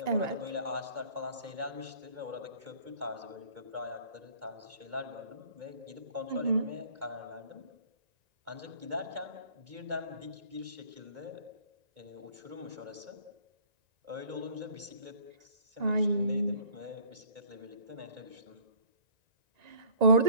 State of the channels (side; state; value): left; late; 1.9 ms